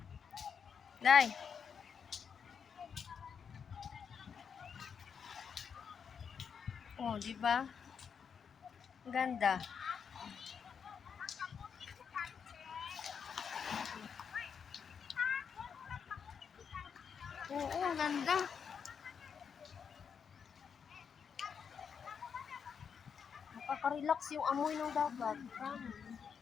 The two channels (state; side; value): quieter; right; 6.8 dB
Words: Day. Oh, di ba? Ganda. Oo, ganda. Nakaka-relax yung amoy ng dagat.